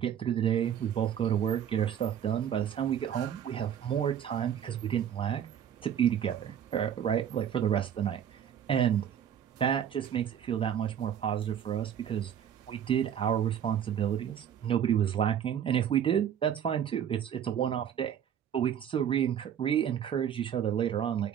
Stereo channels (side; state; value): left; quieter; 9.2 dB